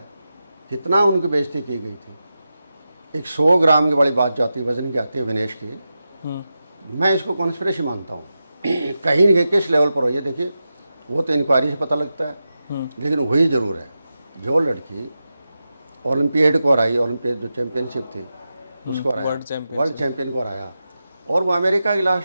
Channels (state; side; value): inverted; both; correlation -0.91